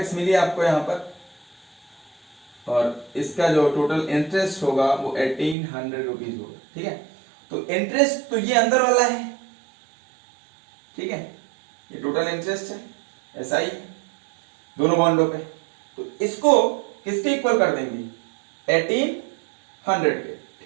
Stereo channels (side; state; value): left; drops out; at 5.6 s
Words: मिली आपको यहां पर, और इसका जो टोटल इंटरेस्ट होगा वो 1800 रुपीज होगा, ठीक है। तो इंटरेस्ट तो ये अंदर वाला है, ठीक है, ये टोटल इंटरेस्ट है, ऐसा ही दोनों बॉन्डों पे। तो इसको किसके इक्वल कर देंगे, 1800 के,